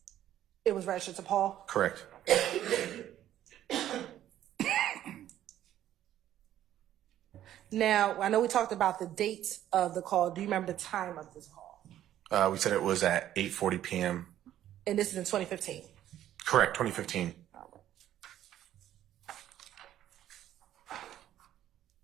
It was registered to Paul? Correct. Now, I know we talked about the dates of the call. Do you remember the time of this call? We said it was at 8:40 p.m. And this is in 2015? Correct, 2015.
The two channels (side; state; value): left; quieter; 12.0 dB